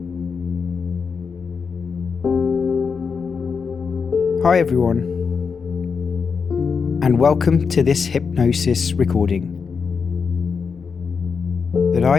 everyone, and welcome to this hypnosis recording that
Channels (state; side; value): quieter; right; 5.7 dB